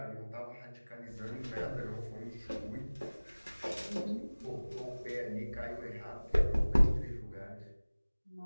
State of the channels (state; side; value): inverted; both; correlation -1.00